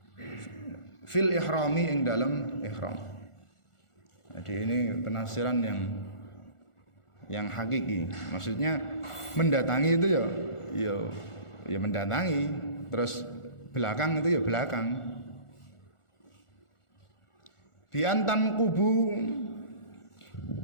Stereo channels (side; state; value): right; late; 1.4 ms